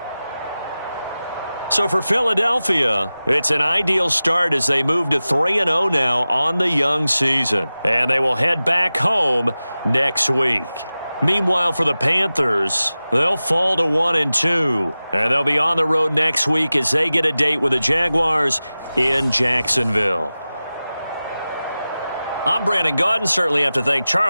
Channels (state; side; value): inverted; both; correlation -0.96